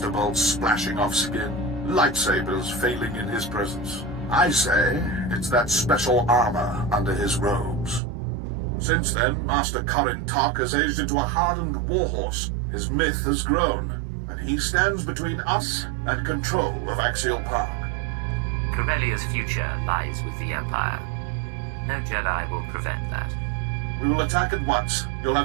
bolts splashing off skin, lightsabers failing in his presence. I say it's that special armor under his robes. Since then, Master Corin Tok has aged into a hardened warhorse. His myth has grown, and he stands between us and control of Axial Park. Corellia's future lies with the Empire. No Jedi will prevent that. We will attack at once. You'll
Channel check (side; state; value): left; drops out; at 8.0 s